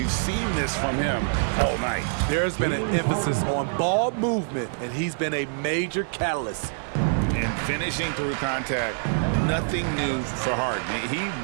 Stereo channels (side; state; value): left; silent; digital silence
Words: seen this from him all night. There's been an emphasis on ball movement, and he's been a major catalyst. And finishing through contact, nothing new for Harden. He